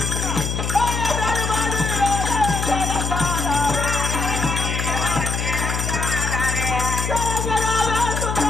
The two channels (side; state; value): left; noise; hum, 2 dB below the sound